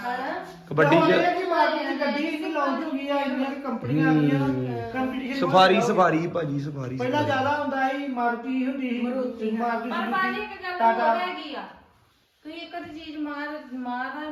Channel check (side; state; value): both; identical; correlation 1.00